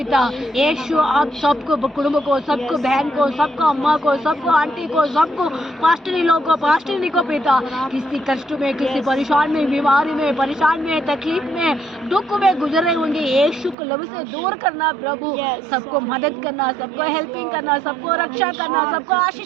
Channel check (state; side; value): drops out; left; at 13.8 s